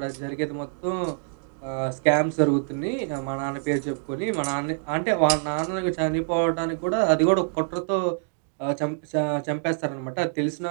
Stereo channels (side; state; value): left; silent; digital silence